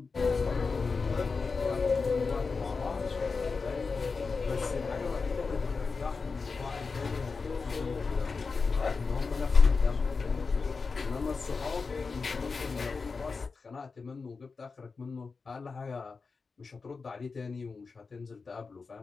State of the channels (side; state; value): right; quieter; 4.6 dB